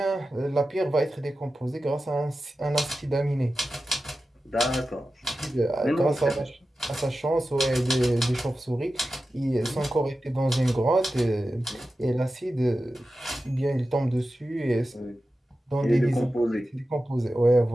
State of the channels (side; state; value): both; normal; correlation 0.93